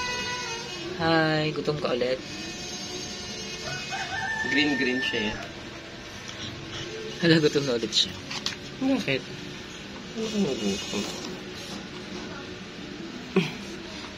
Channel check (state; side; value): identical; both; correlation 1.00